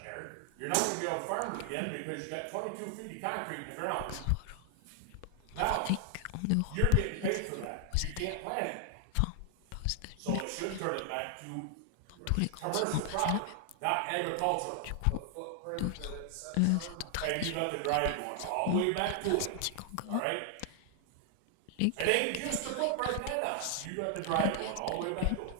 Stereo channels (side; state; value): both; different; correlation 0.00